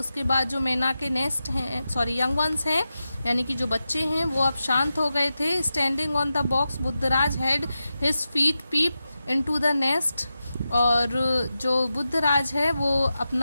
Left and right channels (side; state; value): both; inverted; correlation -0.91